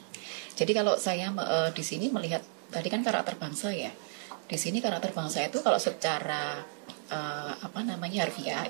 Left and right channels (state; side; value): silent; left; digital silence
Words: Jadi kalau saya di sini melihat tadi kan karakter bangsa ya. Di sini karakter bangsa itu kalau secara harfiah